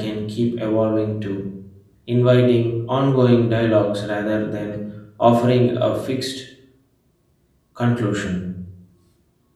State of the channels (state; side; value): identical; both; correlation 1.00